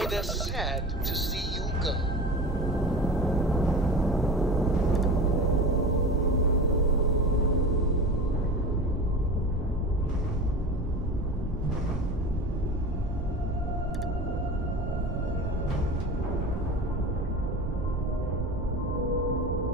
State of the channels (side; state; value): both; normal; correlation 0.32